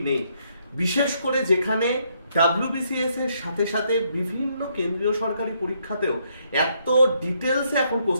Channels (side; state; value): both; inverted; correlation -0.72